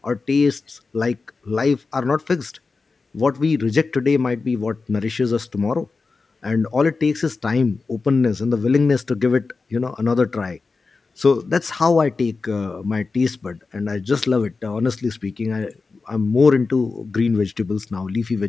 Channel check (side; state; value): right; quieter; 4.2 dB